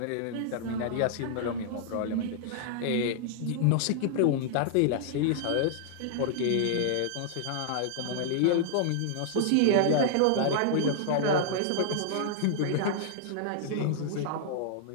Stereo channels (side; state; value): both; different; correlation -0.01